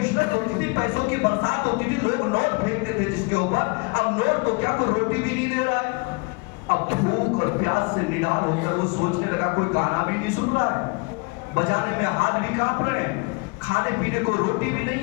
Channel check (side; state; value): right; quieter; 30.2 dB